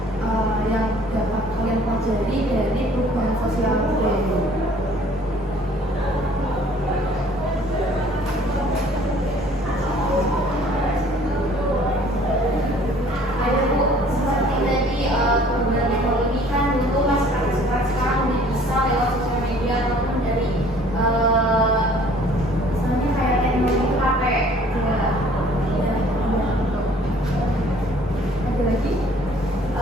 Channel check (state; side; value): normal; both; correlation 0.54